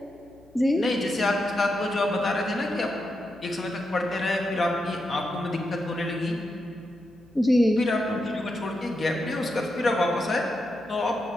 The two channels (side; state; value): left; noise; hum, 28 dB below the sound